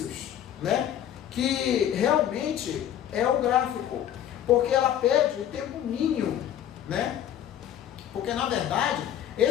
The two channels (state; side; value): quieter; right; 10.6 dB